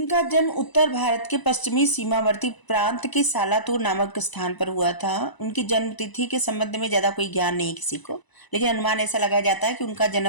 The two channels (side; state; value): right; late; 1.0 ms